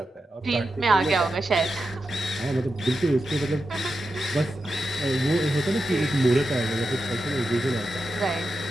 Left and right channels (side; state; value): both; normal; correlation 0.89